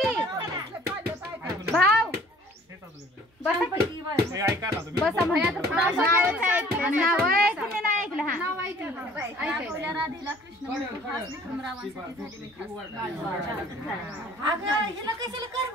की भाव बसा की ऐका ना तुम्ही बसा भैया तर नाव ऐकलं नाही ऐकलं हा नाव ऐकलं ऐकलं राधेला कृष्ण खास विक्रमरावांसाठी झालेले खास अगं हिला कशाला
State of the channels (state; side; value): normal; both; correlation 0.53